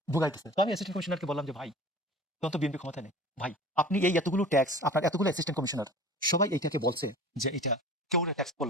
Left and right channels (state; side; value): normal; both; correlation 0.41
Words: ভোগাইতেছে। তো আমি অ্যাসিস্ট্যান্ট কমিশনারকে বললাম যে ভাই, তখন তো বিএনপি ক্ষমতা নেই ভাই, আপনি এই এতগুলো ট্যাক্স, আপনার এতগুলো অ্যাসিস্ট্যান্ট কমিশনার সবাই এইটাকে বলছে যে এটা কেউ ট্যাক্স